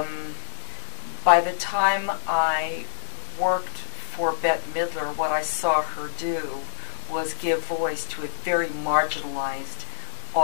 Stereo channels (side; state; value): right; silent; digital silence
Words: by the time I worked for Bette Midler, what I saw her do was give voice to a very marginalized